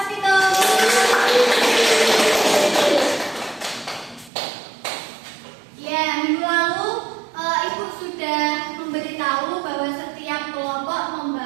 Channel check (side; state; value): left; drops out; at 4.3 s